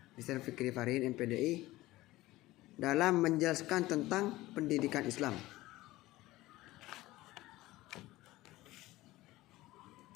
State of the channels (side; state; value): right; quieter; 17.9 dB